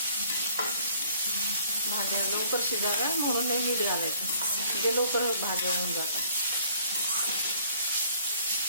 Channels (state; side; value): inverted; both; correlation -0.58